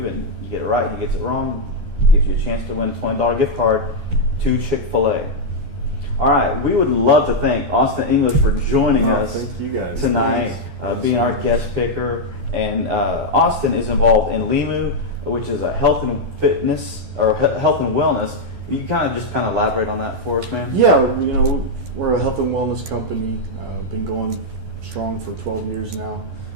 and you get it right, he gets it wrong, it gives you a chance to win a $20 gift card to Chick-fil-A. All right, we would love to thank Auston English for joining us thank you guys. tonight, being our guest picker. And Auston is involved in Limu, which is a health and fitness or health and wellness. You kind of elaborate on that for us, man? Yeah, we're a health and wellness company. Been going strong for 12 years now.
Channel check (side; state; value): left; late; 12 ms